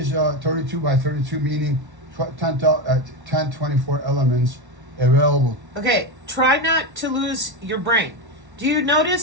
32 by 32, meaning 1024 elements available. Okay, try not to lose your brain. Do you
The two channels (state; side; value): late; left; 1.1 ms